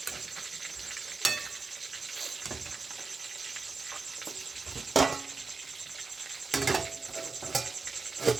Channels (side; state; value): left; quieter; 4.2 dB